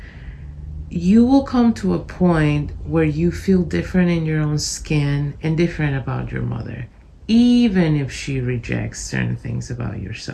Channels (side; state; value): both; identical; correlation 1.00